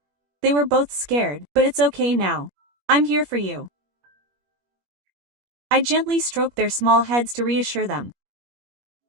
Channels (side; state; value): left; late; 21 ms